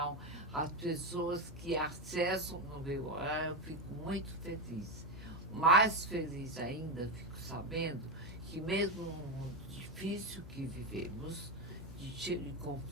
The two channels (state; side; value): normal; both; correlation 0.10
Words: as pessoas que acessam no meu horário, eu fico muito feliz. Mais feliz ainda, fico sabendo que mesmo no mundo difícil que vivemos, cheio de